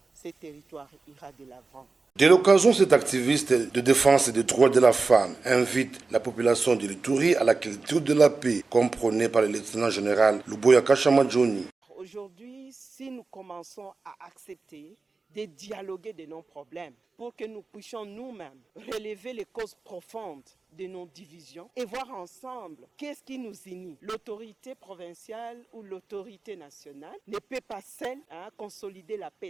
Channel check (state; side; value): quieter; left; 4.0 dB